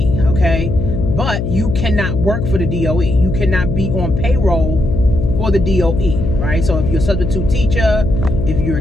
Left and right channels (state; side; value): noise; left; hum, 2 dB below the sound